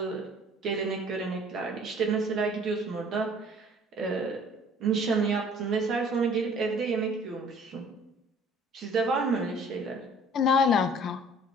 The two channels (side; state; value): both; normal; correlation 0.52